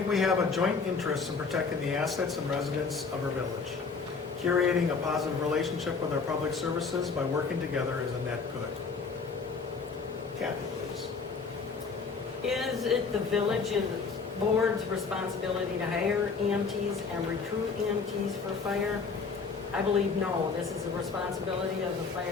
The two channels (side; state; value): right; quieter; 4.9 dB